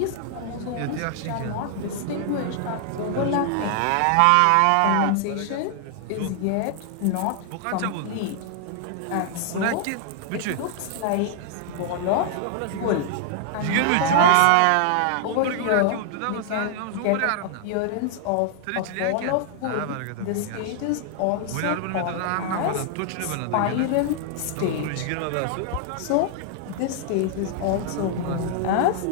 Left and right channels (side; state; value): both; different; correlation 0.00